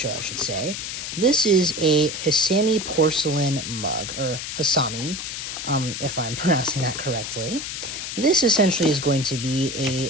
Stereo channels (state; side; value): noise; left; hiss, 6 dB below the sound